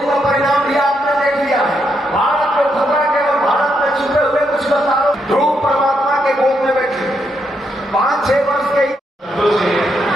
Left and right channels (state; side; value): normal; both; correlation 0.79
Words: का परिणाम भी आपने देख लिया है। भारत को खतरा के और भारत में छुपे हुए कुछ बताओ। ध्रुव परमात्मा के गोद में बैठे 5-6 वर्ष के